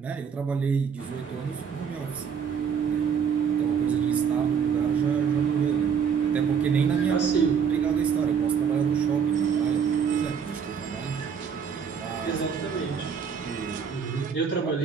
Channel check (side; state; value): left; quieter; 6.9 dB